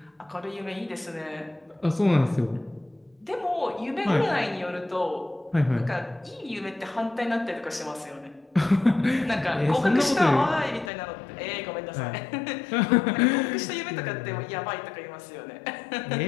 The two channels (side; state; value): right; drops out; at 10.9 s